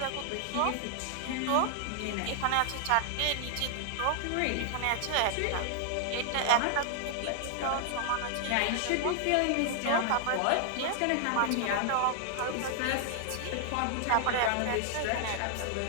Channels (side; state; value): both; different; correlation 0.00